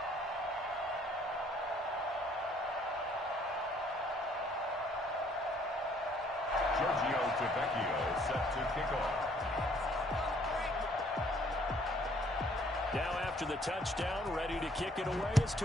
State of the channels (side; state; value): both; normal; correlation 0.62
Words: Tavecchio set to kick off. Now after the touchdown, ready to kick it away is